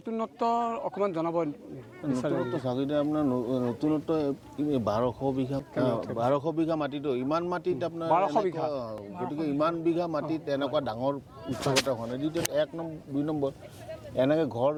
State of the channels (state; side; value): identical; both; correlation 1.00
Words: অকমান জনাব নতুনত্ব চাগিলে আপোনাৰ নতুনত্ব 1200 বিঘা মাটিতো ইমান মাটিত আপোনাৰ 1200 বিঘা গতিকে ইমান বিঘা মাটিত এনেকুৱা ডাঙৰ উৎসৱ এটা হোৱা নাই দ্বিতীয় 2 নম্বৰ এনেকৈ ঘৰ